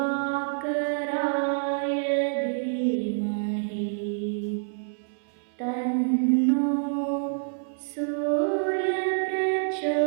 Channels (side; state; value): left; silent; 60 dB below the other